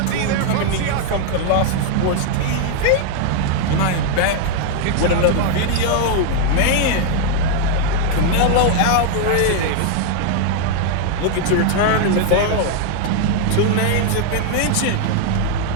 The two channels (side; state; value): both; different; correlation 0.00